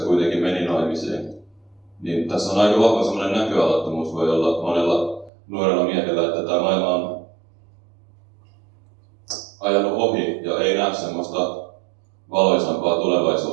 kuitenkin meni naimisiin. Niin tässä on aika vahva semmoinen näköalattomuus voi olla monella nuorella miehellä, että tämä maailma on ajanut ohi ja ei näe semmoista valoisampaa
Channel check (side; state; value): left; drops out; at 5.3 s